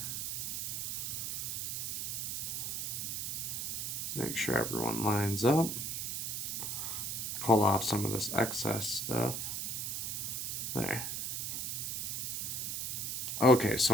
Make sure everyone lines up. Pull off some of this excess stuff. There. Okay,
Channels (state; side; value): noise; right; hiss, 2 dB below the sound